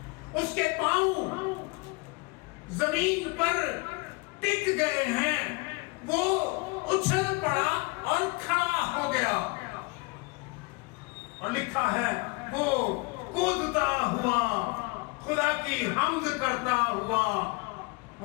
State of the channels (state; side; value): quieter; right; 27.1 dB